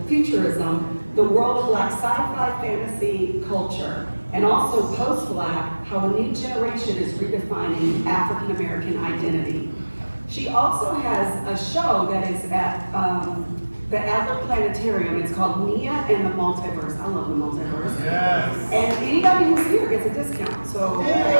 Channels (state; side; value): inverted; both; correlation -1.00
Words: the world of Black sci-fi fantasy culture, and also post-Black, how a new generation is redefining African American identity. She also has a show that is at the Adler Planetarium. It's called Nia and the Multiverse. I love the multiverse. Yes. And anybody who's here gets a discount. So